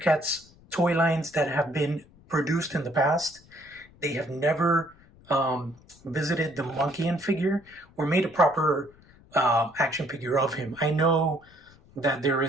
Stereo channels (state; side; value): noise; left; rumble, 27 dB below the sound